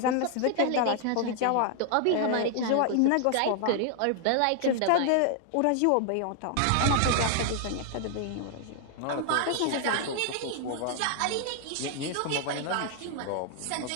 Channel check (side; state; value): both; different; correlation 0.00